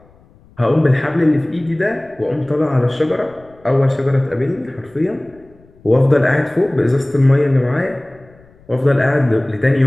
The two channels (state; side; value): noise; left; rumble, 28 dB below the sound